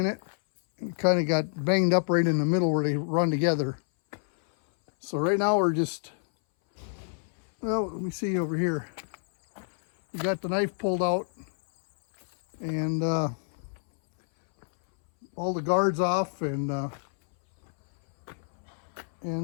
it. It kind of got banged up right in the middle where they run together. So right now we're just, well, let me see over here. We got the knife pulled out and all the guards off and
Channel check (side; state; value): right; silent; 60 dB below the other